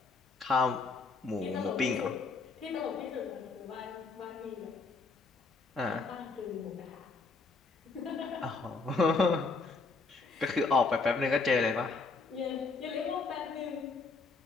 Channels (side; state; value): right; quieter; 4.2 dB